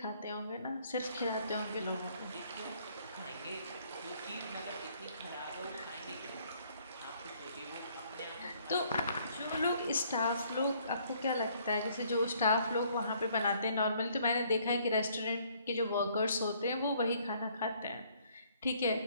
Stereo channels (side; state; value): both; inverted; correlation -0.63